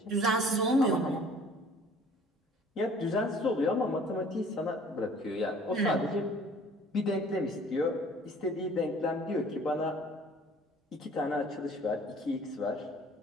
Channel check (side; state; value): both; normal; correlation 0.52